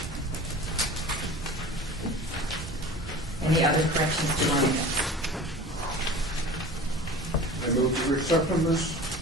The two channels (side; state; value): both; normal; correlation 0.38